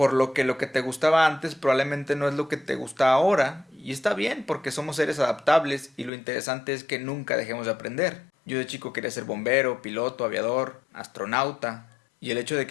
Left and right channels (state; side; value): drops out; right; at 6.1 s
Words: lo que te gustaba antes probablemente no es lo que te gusta ahora, y está bien porque somos seres adaptables y lo interesante es que nunca dejemos de aprender. Yo de chico quería ser bombero, piloto, aviador, astronauta, y el hecho de